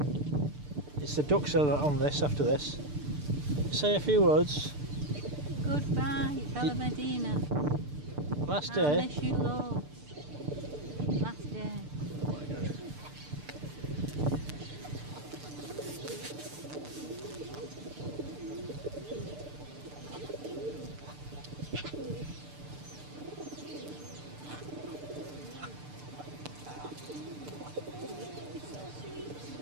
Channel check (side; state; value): left; late; 6.8 ms